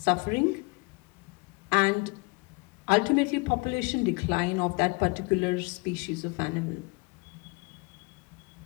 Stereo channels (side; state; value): right; quieter; 28.8 dB